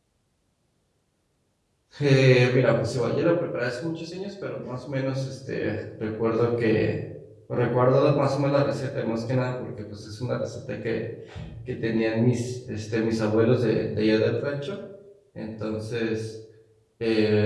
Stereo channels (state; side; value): identical; both; correlation 1.00